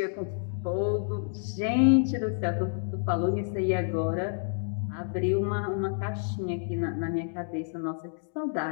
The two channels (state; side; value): silent; right; digital silence